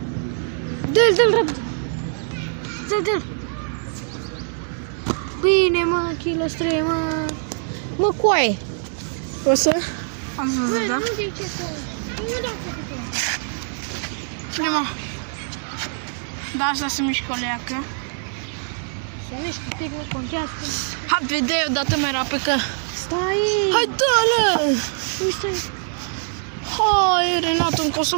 Dă-l repede! Dă-l! Bine, mă, kilo 3, mă! Mă, coaie! O să? Ați Bă, văzut, da? nu de ce să... Nu da Prima. Da, asta se mișcă o leacă. să mișcă, pic, nu contează. Hai, vedei odată mai rapid că... Stai! Hai, dă-le! Uite! Hai, Renato, încă o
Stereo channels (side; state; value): left; silent; 63 dB below the other